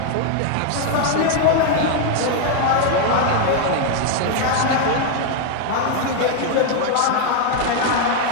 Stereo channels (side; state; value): both; different; correlation 0.00